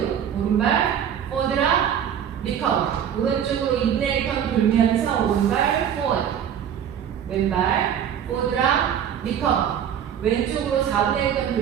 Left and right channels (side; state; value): left; quieter; 9.0 dB